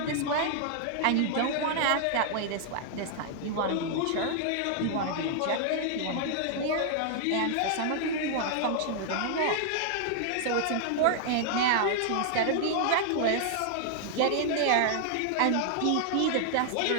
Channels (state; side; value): different; both; correlation 0.00